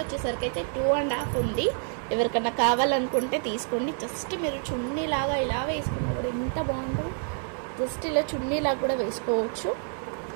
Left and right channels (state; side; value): silent; left; 56 dB below the other